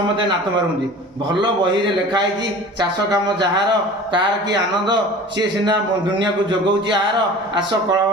नात मारुंदी। भल बही रे लिखाई चाष काम जार तार कि आनंद सी सीना दुनिया को जोगाऊँ आर आस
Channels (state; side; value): normal; both; correlation 0.41